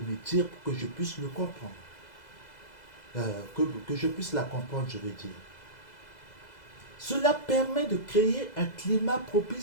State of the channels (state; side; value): late; right; 2.0 ms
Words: dire pour que je puisse le comprendre. Que je puisse la comprendre, je veux dire. Cela permet de créer un climat